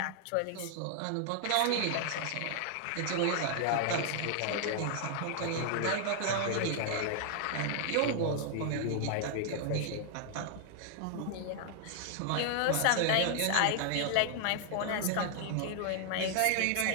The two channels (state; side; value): different; both; correlation 0.00